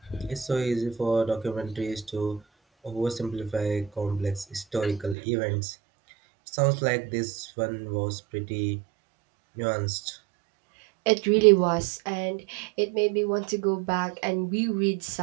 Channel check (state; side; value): drops out; left; at 5.2 s